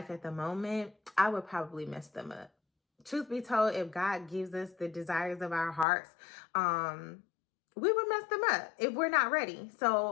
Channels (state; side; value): drops out; right; at 5.9 s